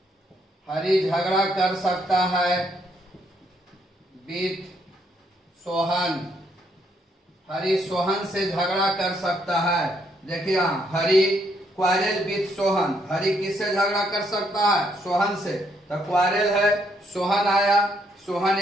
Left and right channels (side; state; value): both; normal; correlation 0.72